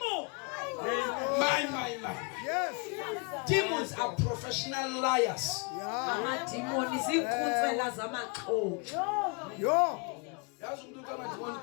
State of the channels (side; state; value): right; quieter; 33.9 dB